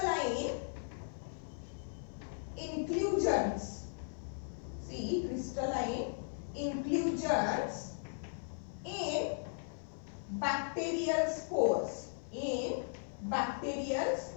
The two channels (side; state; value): right; silent; 53 dB below the other